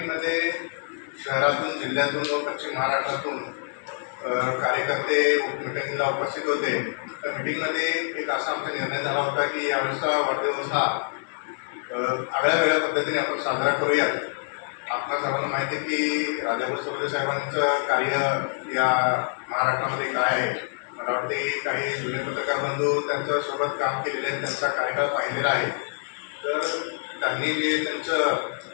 शहरातून जिल्ह्यातून व पश्चिम महाराष्ट्रातून कार्यकर्ते मीटिंगला उपस्थित होते। त्या मीटिंगमध्ये एक असा आमचा निर्णय झाला होता की यावेळेचा वाढदिवस हा आगळ्या वेगळ्या पद्धतीने आपण साजरा करूयात। आपल्या सर्वांना माहिती आहे की राजाभाऊ सरदेसाई साहेबांचं कार्य या महाराष्ट्रामध्ये काय आहे। मला वाटते की काही जुने पत्रकार बंधू त्यांच्यासोबत काम केलेले आहेत, त्यांचा कार्यकाळ पाहिलेला आहे। तर त्यांनी जे त्यांचं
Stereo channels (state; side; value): silent; right; digital silence